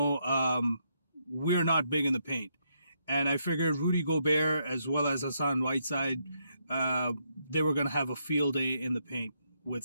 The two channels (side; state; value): both; inverted; correlation -0.77